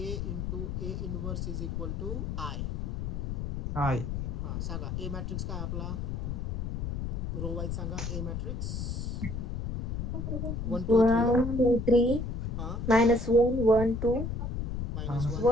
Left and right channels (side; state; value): left; noise; rumble, 3 dB below the sound